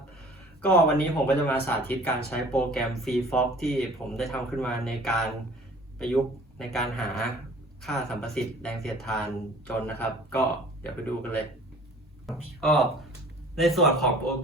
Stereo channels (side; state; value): both; normal; correlation 0.48